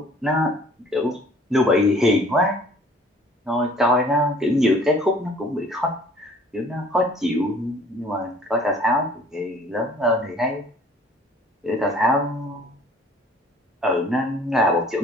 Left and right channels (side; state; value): both; normal; correlation 0.53